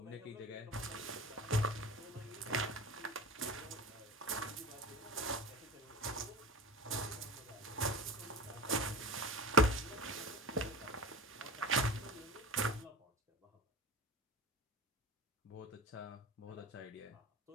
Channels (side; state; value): both; normal; correlation 0.32